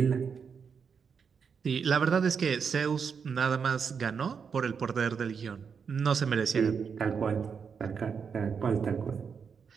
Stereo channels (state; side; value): quieter; left; 6.3 dB